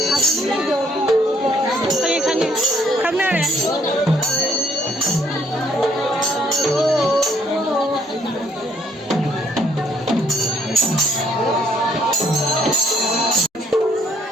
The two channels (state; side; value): normal; both; correlation 0.67